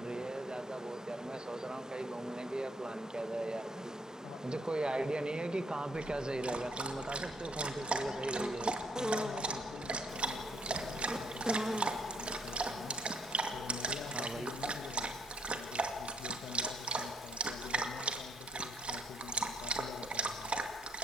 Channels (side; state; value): both; normal; correlation 0.68